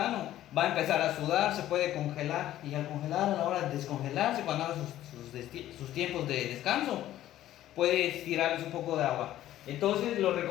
va a empezar a sudar, se puede congelar, y al congelar, a la hora de descongelarse, cuando haga sus tiempos de descanso, puede tirarles un poco de agua. Entonces lo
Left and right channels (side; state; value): right; quieter; 13.3 dB